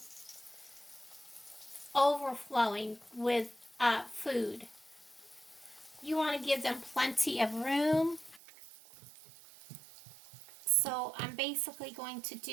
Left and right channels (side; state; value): left; drops out; at 8.4 s